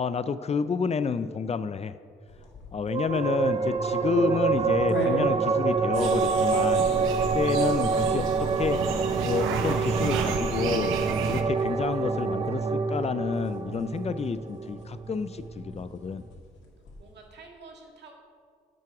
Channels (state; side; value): normal; both; correlation 0.55